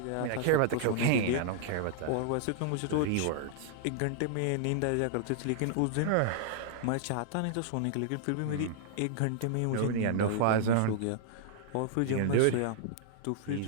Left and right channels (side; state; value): both; different; correlation -0.01